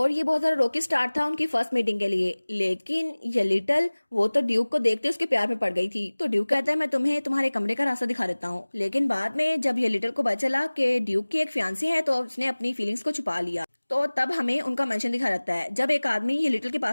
ये बहुत ज्यादा रोकी स्टार्ट था उनकी फर्स्ट मीटिंग के लिए, लेकिन ये लिटिल वो तो ड्यूक को देखते उसके प्यार में पड़ गई थी। तो ड्यूक कहता है मैं तुम्हें तुम्हारे कमरे का रास्ता दिखा देता हूँ, लेकिन बाद में जब ये लिटिल को पता चला कि ड्यूक की एक फियांसी है तो उसने अपनी फीलिंग्स को छुपा लिया। तो तब हमें उनका मेंशन दिखा रहता है जब एक आदमी ये लिटिल के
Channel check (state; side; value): inverted; both; correlation -1.00